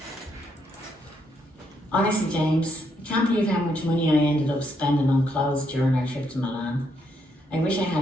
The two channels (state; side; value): normal; both; correlation 0.76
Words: Honestly, James, I can't believe how much money I ended up spending on clothes during our trip to Milan. I wish I